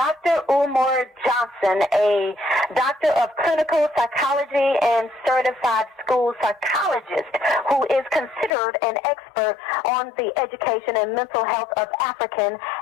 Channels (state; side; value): drops out; right; at 8.6 s